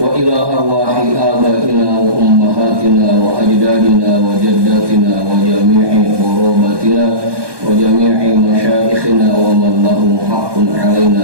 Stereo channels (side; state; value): left; late; 1.2 ms